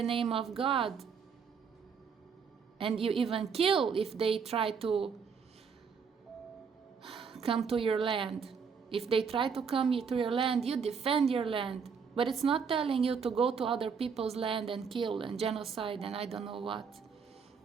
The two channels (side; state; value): left; quieter; 6.1 dB